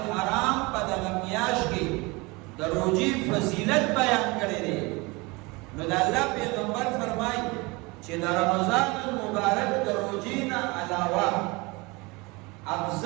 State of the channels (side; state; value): left; quieter; 25.3 dB